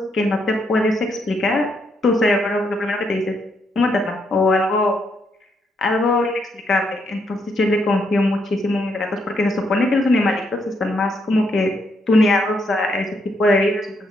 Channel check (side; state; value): both; normal; correlation 0.76